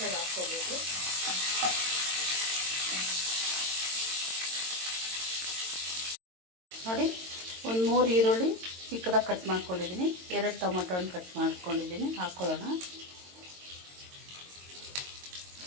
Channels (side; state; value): left; late; 22 ms